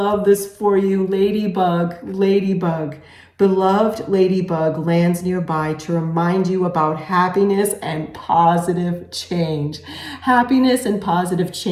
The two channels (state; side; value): identical; both; correlation 1.00